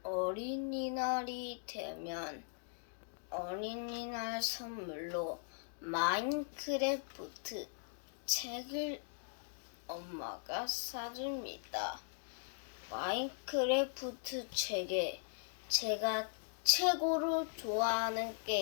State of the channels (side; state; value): right; silent; digital silence